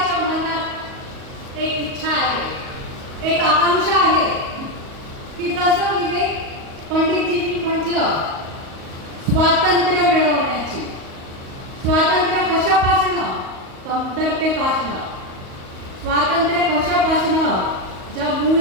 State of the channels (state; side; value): late; left; 38 ms